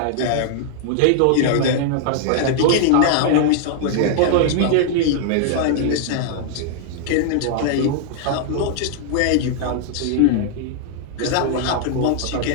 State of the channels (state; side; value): different; both; correlation -0.01